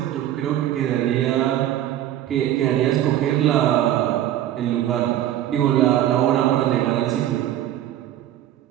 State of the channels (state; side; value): quieter; left; 12.3 dB